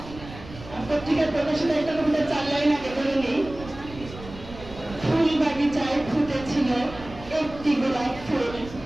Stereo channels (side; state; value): right; noise; rumble, 15 dB below the sound